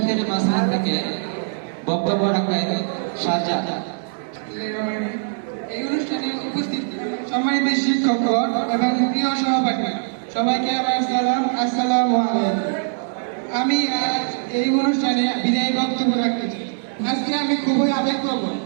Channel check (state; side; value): silent; left; digital silence